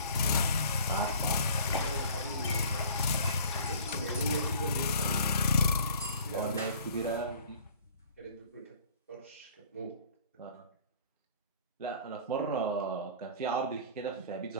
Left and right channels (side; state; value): both; inverted; correlation -0.49